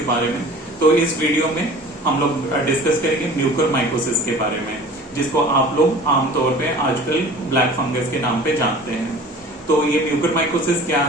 बारे में। तो इस वीडियो में हम लोग डिस्कस करेंगे म्यूकरमाइकोसिस के बारे में, जिसको आप लोग आमतौर पे आजकल ब्लैक फंगस के नाम पे जानते हैं। तो ये म्यूकरमाइकोसिस क्या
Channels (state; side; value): normal; both; correlation 0.43